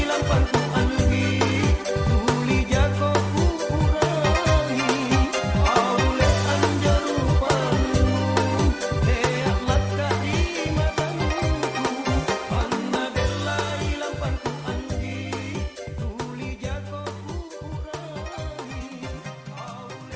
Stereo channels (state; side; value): identical; both; correlation 1.00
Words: lampanku anggi tuli jako ku urangi aule anjaru panu leak laka di mataku panna delai lampanku anggi tuli jako ku urangi